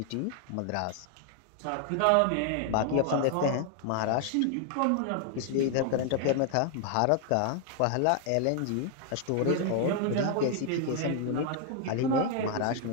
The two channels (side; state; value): both; different; correlation 0.00